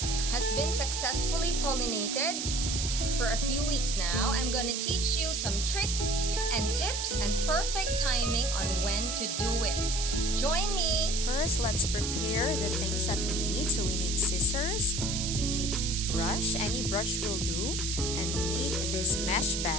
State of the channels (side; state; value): right; noise; hiss, 2 dB below the sound